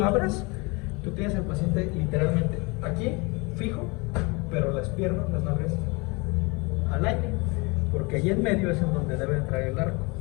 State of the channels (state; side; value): quieter; right; 27.8 dB